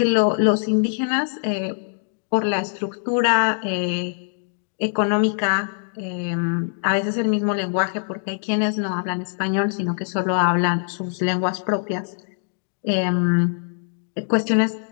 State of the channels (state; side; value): silent; right; digital silence